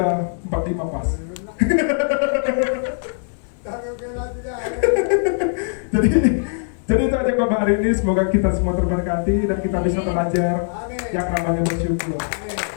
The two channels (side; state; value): right; silent; digital silence